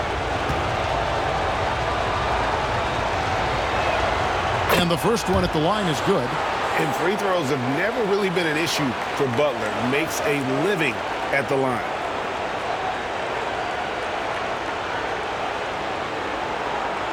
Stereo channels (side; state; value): both; identical; correlation 1.00